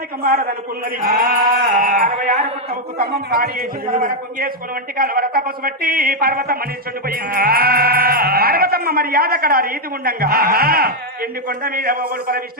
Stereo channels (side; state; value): both; normal; correlation 0.01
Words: మారదనుకున్నది 66 పుట్టవుకు తమ్మం పాడి వేసి కలవర కుంగేసుకుని వంటి కలవర తపస్సు బట్టి పర్వతమ్మ నిల్చుండిపోయింది పర్వతమ్మ మర్యాద అక్కడ రీతి ఉండంగా ఎండి కొండ మీద ఒకడు పర